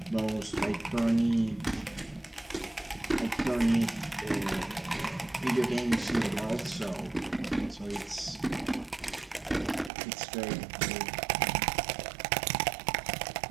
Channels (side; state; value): left; drops out; at 9.9 s